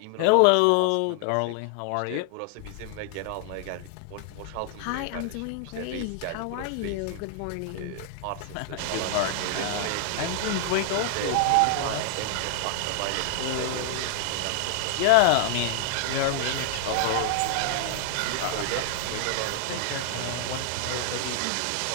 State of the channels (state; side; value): different; both; correlation 0.00